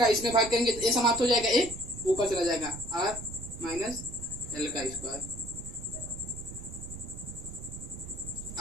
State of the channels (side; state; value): right; noise; rumble, 11 dB below the sound